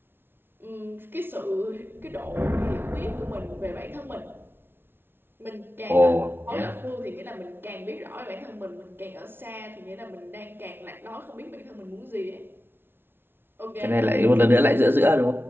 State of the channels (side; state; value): left; late; 0.11 ms